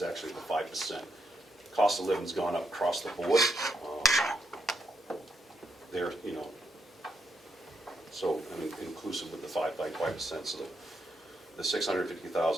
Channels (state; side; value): normal; both; correlation 0.80